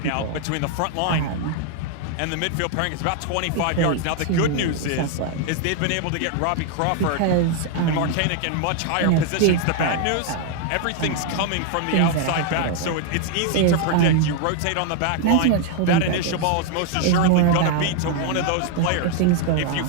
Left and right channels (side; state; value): both; different; correlation 0.00